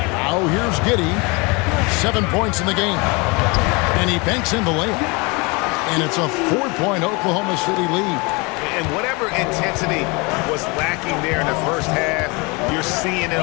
Now here's Giddey. 7 points in the game. And he banks in the layup. And it's a 4-point Oklahoma City lead. And whatever intensity was lacking there in the first half, you're seeing it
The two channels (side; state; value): right; quieter; 27.9 dB